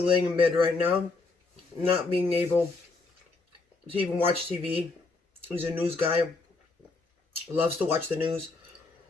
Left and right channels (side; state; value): right; quieter; 3.7 dB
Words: in bed right now, not being able to even watch TV. He's a news guy, loves to watch the news.